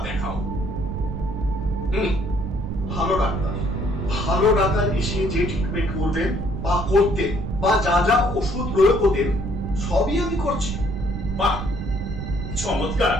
দেখাও। ভালো ডাক্তার? ভালো ডাক্তার এসে যে ট্রিটমেন্ট করবেন বা করতেন বা যা যা ওষুধ প্রয়োগ করতেন সবই আমি করছি। বাহ, চমৎকার।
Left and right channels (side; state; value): right; noise; rumble, 5 dB below the sound